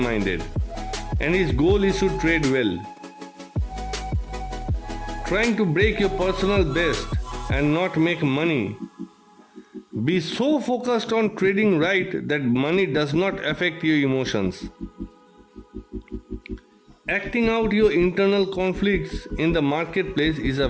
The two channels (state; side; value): identical; both; correlation 1.00